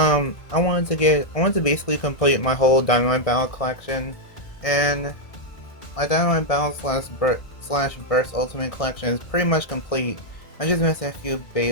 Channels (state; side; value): late; right; 1.6 ms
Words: wanted to basically complete my whole Dynamite Battle collection, and my Dynamite Battle slash Burst Ultimate collection is pretty much complete. I just missed a few